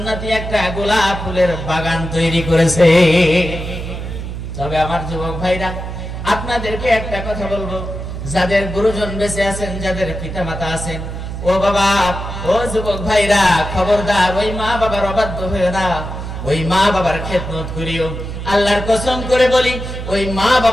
একটা গোলাপ ফুলের বাগান তৈরি করেছে। তবে আমার যুবক ভাইরা, আপনাদেরকে একটা কথা বলবো, যাদের গুরুজন বেঁচে আছেন, যাদের পিতা মাতা আছেন, ও বাবা, ও যুবক ভাইরা, খবরদার ওই মা বাবার অবাধ্য হয়ে না, ওই মা বাবার খেদমত করিও। আল্লাহর কসম করে বলি, ওই মা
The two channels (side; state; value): right; noise; hum, 7 dB below the sound